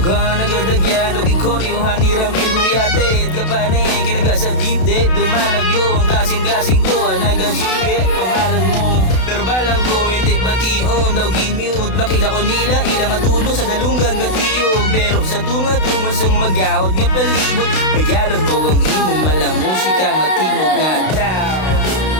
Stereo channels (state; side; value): late; right; 32 ms